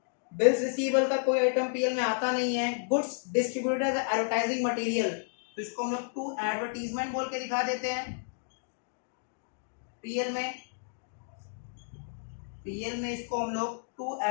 बिल्स रिसीवेबल का कोई आइटम पीएल में आता नहीं है। Goods distributed as advertising material, तो इसको हम लोग टू एडवर्टीजमेंट बोल के दिखा देते हैं पीएल में। पीएल में इसको हम लोग टू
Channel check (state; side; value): silent; right; digital silence